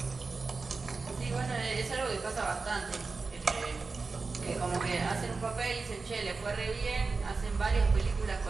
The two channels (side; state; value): left; quieter; 4.2 dB